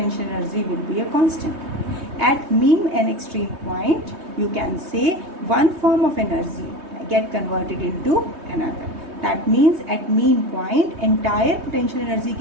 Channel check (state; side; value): late; left; 3.2 ms